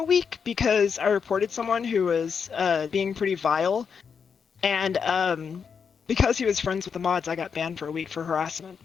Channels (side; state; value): right; quieter; 6.4 dB